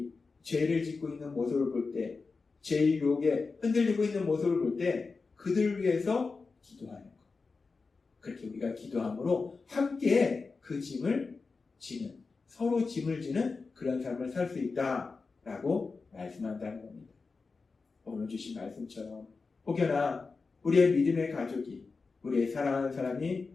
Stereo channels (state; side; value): quieter; right; 4.3 dB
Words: 죄를 짓고 있는 모습을 볼 때, 죄의 유혹에 흔들리고 있는 모습을 볼 때 그들을 위해서 기도하는 것. 그렇게 우리가 기도함으로 함께 그 짐을 지는, 서로 짐을 지는 그런 삶을 살 수 있다라고 말씀한다는 겁니다. 오늘 주신 말씀처럼 혹여나 우리의 믿음의 가족이, 우리의 사랑하는 사람이